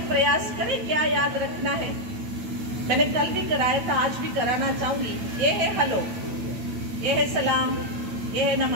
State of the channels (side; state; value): left; late; 8.9 ms